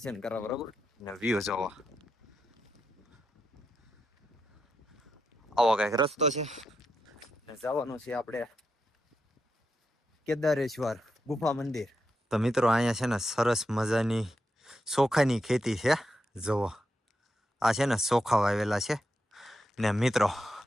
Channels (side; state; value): both; normal; correlation 0.85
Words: કરવા, બરોબર ને વ્યૂ જોવા. આવો કઈક રસ્તો છે ને જવાનું છે આપણે કેદારેશ્વર ગુફા મંદિર. તો મિત્રો અહીંયા છે ને સરસ મજાની ચોખાની ખેતી છે. જોવો, આ છે ને ચોખા વાવેલા છે ને મિત્રો